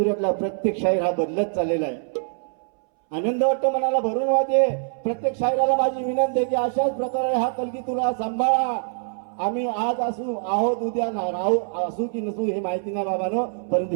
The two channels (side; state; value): left; silent; 63 dB below the other